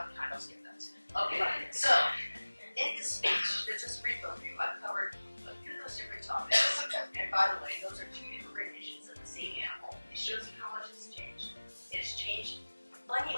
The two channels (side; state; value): both; inverted; correlation -1.00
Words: I'll skip that. Okay, so, in this speech, just a brief overview, I've covered a few of those those different topics. And by the way, those are two different renditions of the same animal. It shows you how much it's changed. It has changed plenty